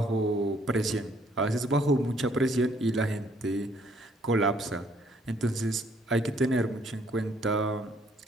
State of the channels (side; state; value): both; normal; correlation 0.65